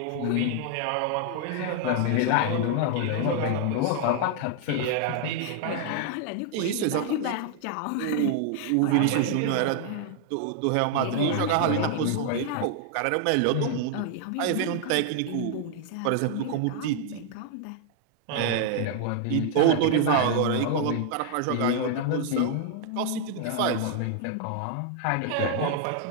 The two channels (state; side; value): different; both; correlation 0.00